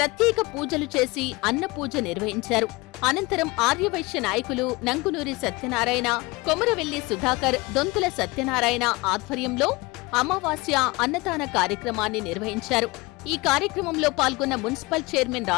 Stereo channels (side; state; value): right; quieter; 23.7 dB